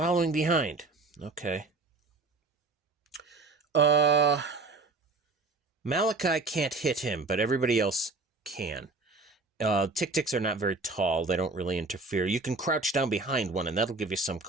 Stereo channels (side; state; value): left; quieter; 3.5 dB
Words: behind. Okay. Malachi can't hit him, but everybody else can. Tick-ticks are not very tall. They don't really interfere. You can crouch down behind one, and that'll give you some